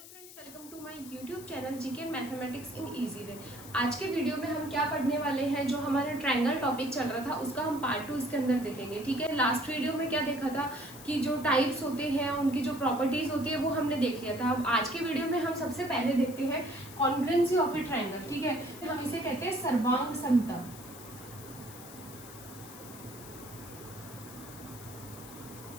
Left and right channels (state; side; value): noise; left; hiss, 16 dB below the sound